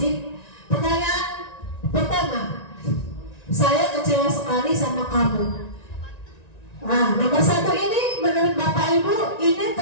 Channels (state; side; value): late; right; 1.9 ms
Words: Pertanyaan pertama, saya kecewa sekali sama kamu. Nah, nomor 1 ini menurut Bapak Ibu ini